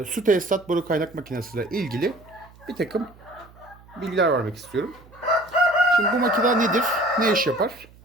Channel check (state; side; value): noise; right; hum, 24 dB below the sound